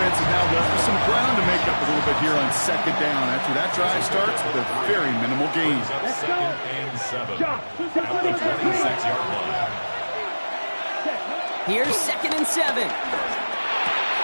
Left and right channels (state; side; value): inverted; both; correlation -1.00